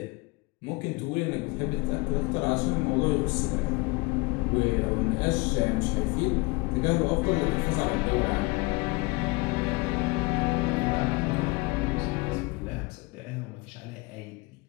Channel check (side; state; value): right; quieter; 25.5 dB